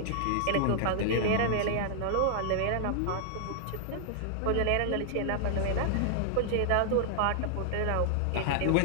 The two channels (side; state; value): both; different; correlation -0.01